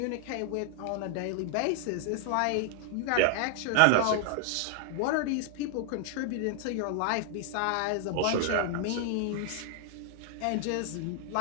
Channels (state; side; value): different; both; correlation 0.00